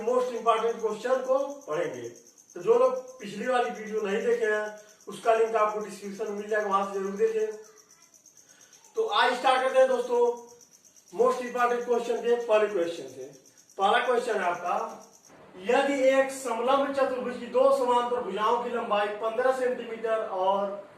मोस्ट इंपॉर्टेंट क्वेश्चन को पढ़ेंगे। तो जो लोग पिछली वाली वीडियो नहीं देखे हैं, उसका लिंक आपको डिस्क्रिप्शन में मिल जाएगा, वहां से जरूर देखें। तो आज स्टार्ट करते हैं दोस्तों मोस्ट इंपॉर्टेंट क्वेश्चन के पहले क्वेश्चन से। पहला क्वेश्चन है आपका, यदि एक समलंब चतुर्भुज की 2 समांतर भुजाओं की लंबाई 15 सेंटीमीटर और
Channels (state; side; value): identical; both; correlation 1.00